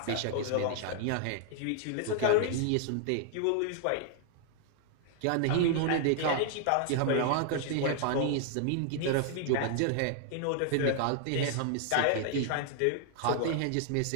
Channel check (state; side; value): different; both; correlation 0.00